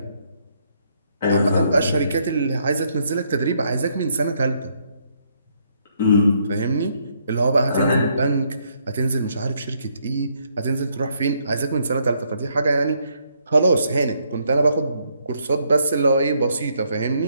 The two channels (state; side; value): inverted; both; correlation -0.72